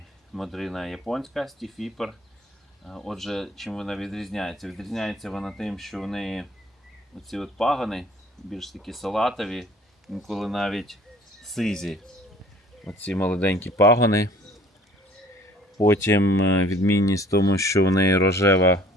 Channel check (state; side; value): normal; both; correlation 0.53